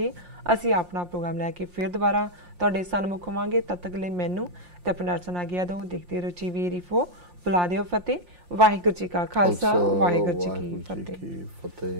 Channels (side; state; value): left; late; 3.4 ms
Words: ਅਸੀਂ ਆਪਣਾ ਪ੍ਰੋਗਰਾਮ ਲੈ ਕੇ ਫਿਰ ਦੁਬਾਰਾ ਤੁਹਾਡੇ ਸਨਮੁਖ ਹੋਵਾਂਗੇ। ਤਦ ਤੱਕ ਲਈ ਮੈਨੂੰ ਤੇ ਆਪਣੇ ਨਾਲ ਸੁਣਾ ਗਿਆ ਦੋ ਦੇਖਦੇ ਰਹੋ TV4। ਬੁਲਾ ਦਿਓ ਫਤਿਹ। ਵਾਹਿਗੁਰੂ ਜੀ ਕਾ ਖਾਲਸਾ, ਵਾਹਿਗੁਰੂ ਜੀ ਕੀ